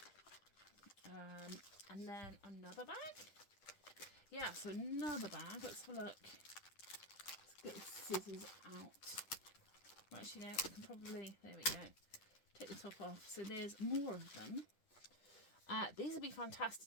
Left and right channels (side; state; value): right; late; 10 ms